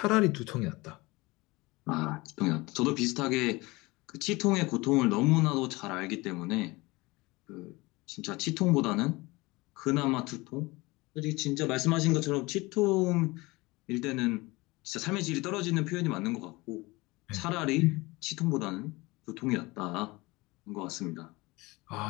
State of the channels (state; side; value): quieter; right; 22.7 dB